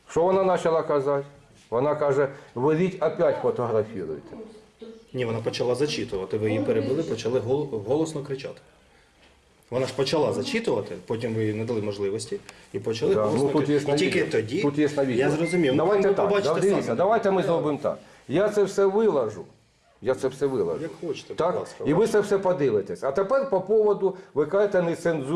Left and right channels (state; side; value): identical; both; correlation 1.00